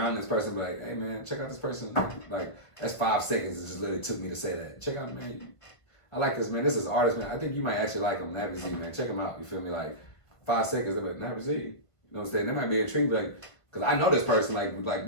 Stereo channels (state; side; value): late; right; 1.5 ms